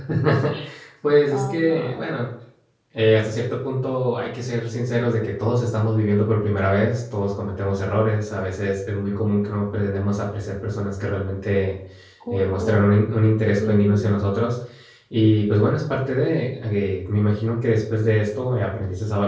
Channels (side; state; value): both; identical; correlation 1.00